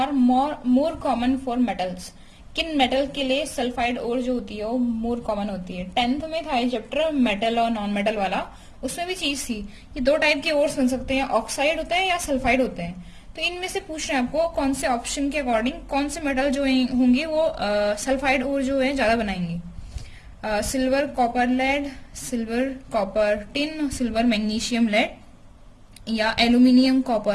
more common for metals. किन मेटल के लिए सल्फाइड ओर जो होती है वो मोर कॉमन होती है। 10th में था ये चैप्टर मेटल और नॉन मेटल वाला, उसमें भी चीज थी, ये दो टाइप के ओर्स बन सकते हैं, ऑक्साइड होते हैं या सल्फाइड होते हैं। तो इनमें से पूछ रहे हैं आपको कौन से ऑप्शन के अकॉर्डिंग कौन से मेटल जो होंगे वो सल्फाइड ओर जो है ज्यादा बनाएंगे। Silver copper lead, silver copper tin, silver magnesium lead, या एल्यूमिनियम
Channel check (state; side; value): identical; both; correlation 1.00